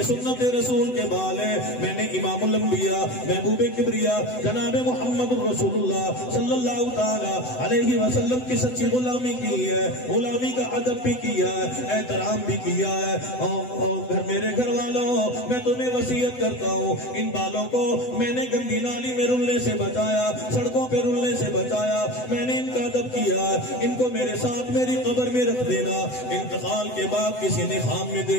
سنت رسول کے بال ہے، میں نے امام الانبیاء محبوب کبریا جناب محمد رسول اللہ صلی اللہ تعالی علیہ وسلم کی سچی غلامی کی ہے، غلامی کا ادب بھی کیا ہے، احترام بھی کیا ہے۔ اور میرے گھر والوں، میں تمہیں وصیت کرتا ہوں، ان بالوں کو میں نے گندی نالی میں رلنے سے بچایا، سڑکوں پہ رلنے سے بچایا، میں نے ان کا ادب کیا ہے، ان کو میرے ساتھ میری قبر میں رکھ دینا۔ انتقال کے بعد کسی نے خواب میں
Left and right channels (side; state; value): right; late; 7.9 ms